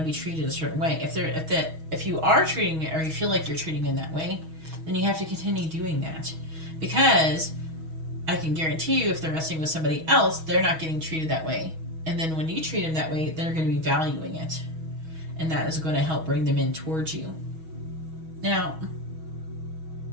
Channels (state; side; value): late; left; 6.2 ms